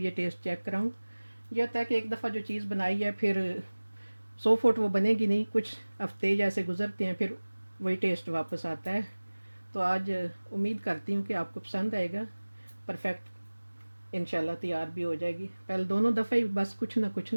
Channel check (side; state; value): both; inverted; correlation -1.00